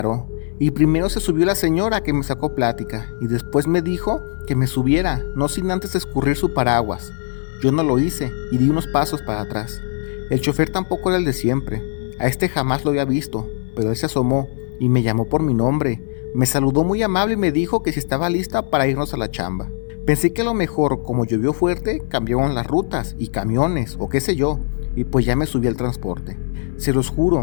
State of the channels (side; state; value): right; silent; 59 dB below the other